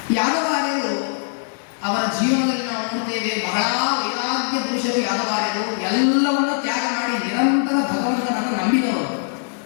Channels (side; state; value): right; silent; digital silence